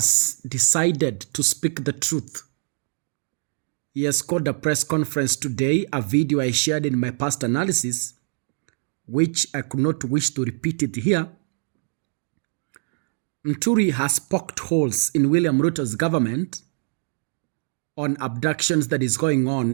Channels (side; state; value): left; silent; 63 dB below the other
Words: decided to speak the truth. He has called a press conference today, a video I shared in my past analysis, which I could not wish to repeat it here. Muturi has poked holes in William Ruto's government on abductions that is going